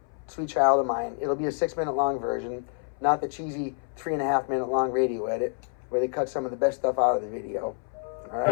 Sweet Child of Mine. It'll be a 6 minute long version, not the cheesy 3.5 minute long radio edit where they cut some of the best stuff out of the video. All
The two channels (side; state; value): right; silent; 60 dB below the other